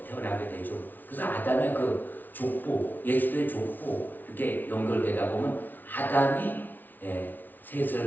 태어나게 되죠. 그래서 아담의 그 족보, 예수의 족보 이렇게 연결되다 보면 아담이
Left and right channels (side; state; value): right; late; 0.086 ms